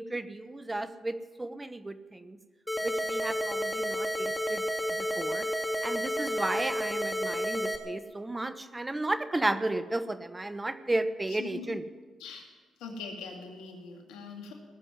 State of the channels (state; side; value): normal; both; correlation 0.95